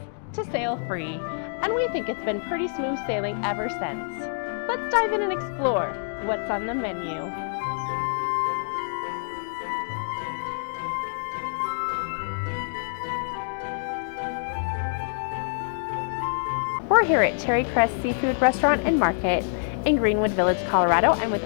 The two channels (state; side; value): silent; right; digital silence